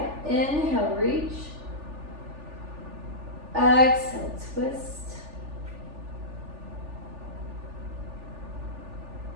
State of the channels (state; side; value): late; left; 3.4 ms